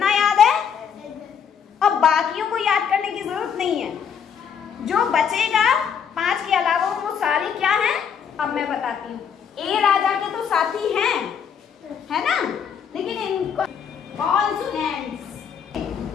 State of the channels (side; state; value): right; quieter; 7.4 dB